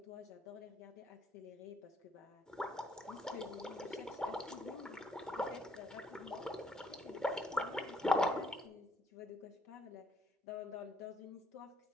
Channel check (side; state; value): both; normal; correlation 0.67